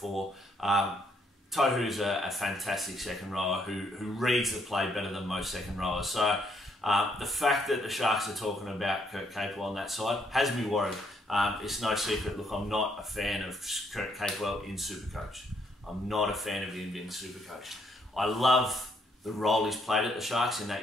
Tohu's a fantastic second rower who reads the play better than most second rowers. So the fact that the Sharks are talking about Kurt Capewell on that side has me worried. It's no secret. Look, I'm not a fan of Kurt Capewell in Supercoach. I'm not a fan of him in Supercoach. I love the role he's played at the Sharks, in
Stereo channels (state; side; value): normal; both; correlation 0.71